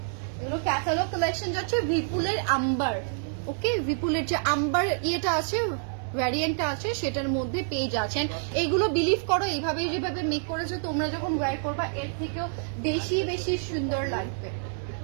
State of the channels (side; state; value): left; silent; digital silence